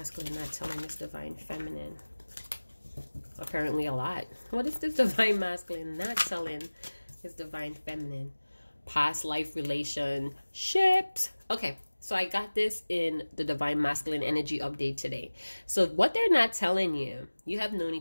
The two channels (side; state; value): both; inverted; correlation -1.00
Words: not telling this divine feminine? Apparently a lot. What is this divine masculine not telling his divine feminine? Past life relationships. Okay. So I got this in the Divine Masculine Energy Update today. So what they're not telling you, you have known